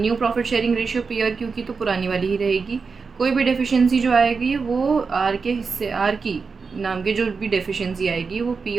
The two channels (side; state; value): left; quieter; 5.0 dB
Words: profit sharing ratio P और क्यू की तो पुरानी वाली ही रहेगी। कोई भी डेफिशिएंसी जो आएगी वो आर के हिस्से, आर की नाम के जो भी डेफिशिएंसी आएगी वो पी